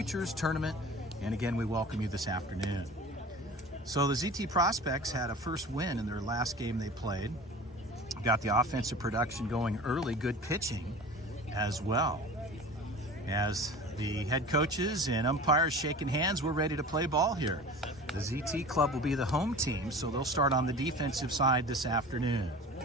Tournament, and again, we welcome you this afternoon. So the ZT Prospects had a first win in their last game they played. Got the offensive production going early, good pitching as well. As the head coaches and umpires shaking hands, we're ready to play ball here. The ZT Club will be the home team, so they'll start on the defensive side this afternoon.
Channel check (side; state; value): both; normal; correlation 0.39